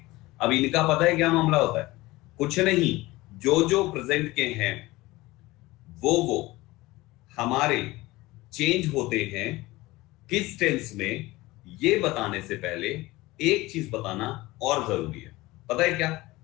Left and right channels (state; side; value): quieter; right; 19.7 dB